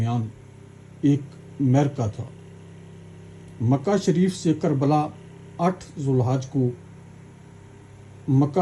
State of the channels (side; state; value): both; identical; correlation 1.00